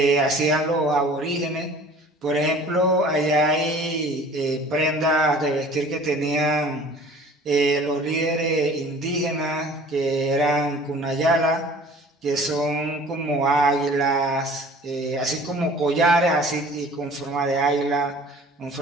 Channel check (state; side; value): normal; both; correlation 0.48